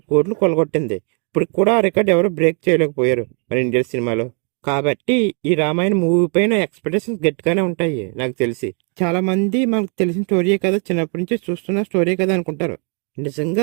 కోట్లు కొలగొట్టింది. ఇప్పుడు కూడా ఆ రికార్డ్ ఎవరు బ్రేక్ చేయలేకపోయారు మన ఇండియన్ సినిమాలో. కాబట్టి ఈ రామాయణ మూవీ పైన ఎక్స్పెక్టేషన్స్ గట్టిగానే ఉంటాయి. నాకు తెలిసి చాలా మంది మనకు తెలిసిన స్టోరీయే కదా, చిన్నప్పటి నుంచి చూస్తున్న స్టోరీ కదా అనుకుంటారు.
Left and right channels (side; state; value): left; quieter; 39.3 dB